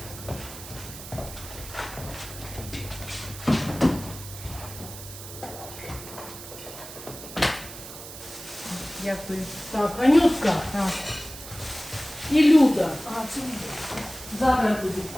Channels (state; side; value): noise; right; hiss, 13 dB below the sound